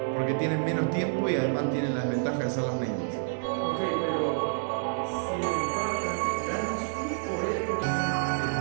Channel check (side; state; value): left; silent; 59 dB below the other